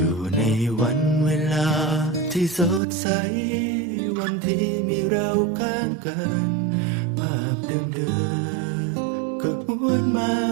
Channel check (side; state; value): left; drops out; at 2.8 s